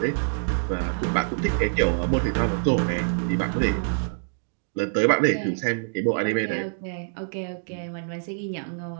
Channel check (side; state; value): left; silent; digital silence